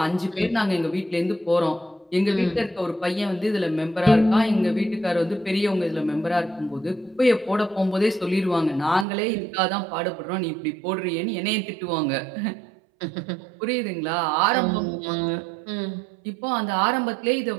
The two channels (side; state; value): left; drops out; at 9.1 s